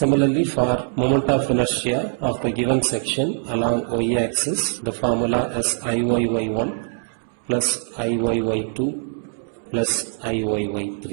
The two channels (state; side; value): silent; left; digital silence